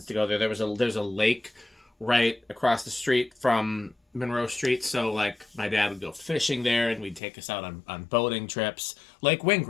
to go there. There's a lake right across the street from Monroe Street, so like my dad would go fishing there, and we'd take us out on boating trips. Lake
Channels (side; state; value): right; drops out; at 7.2 s